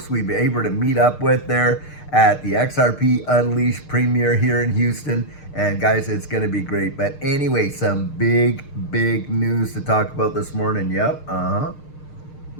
we've been able to meet up with there at the XRP Unleashed premiere here in Houston. And guys, it's going to be great. But anyway, some big news to talk about this morning. Yep.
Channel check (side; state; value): right; late; 6.6 ms